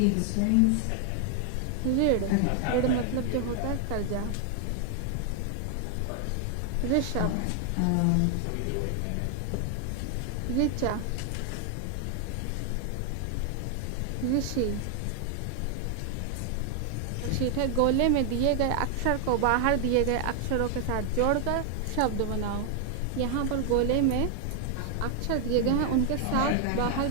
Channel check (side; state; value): both; different; correlation 0.00